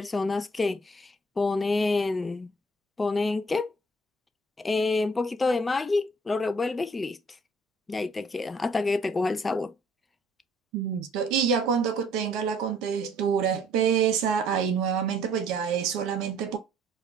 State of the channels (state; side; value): normal; both; correlation 0.60